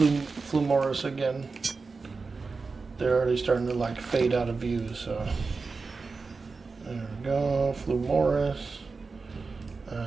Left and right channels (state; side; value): quieter; left; 4.3 dB